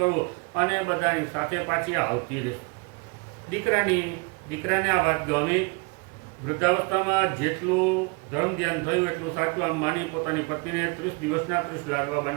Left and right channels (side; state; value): left; quieter; 30.5 dB